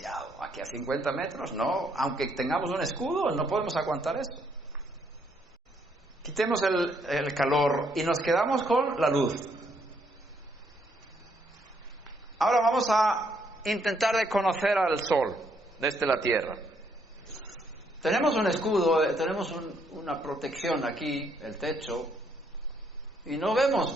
Aquí a 50 metros, no, aunque tengamos un escudo, no podemos aguantar eso. Quitemos el calor y nos quedamos con la luz. Ahora vamos a intentar de conocer al sol desde la tierra. Tenemos un escudo, tenemos una protección aquí, el techo, y no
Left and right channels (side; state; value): both; normal; correlation 0.71